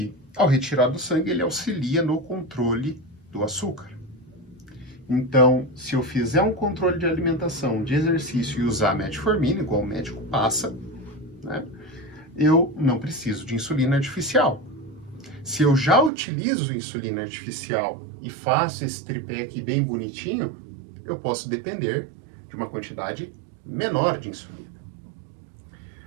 ao retirar do sangue, ele auxilia no controle do açúcar. Então, se eu fizer um controle de alimentação, de exercício e usar metformina, igual o médico passa, né, eu não preciso de insulina artificial. Se eu já utilizo insulina artificial e faço esse tripé aqui bem bonitinho, eu posso depender de uma quantidade menor de insulina.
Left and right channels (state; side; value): drops out; left; at 16.1 s